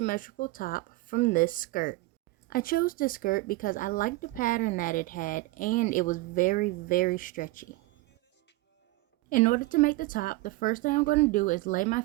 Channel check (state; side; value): quieter; left; 20.2 dB